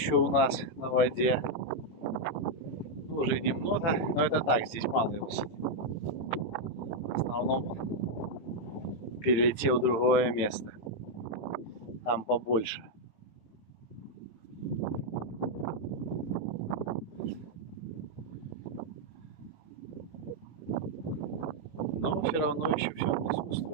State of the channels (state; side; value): late; right; 18 ms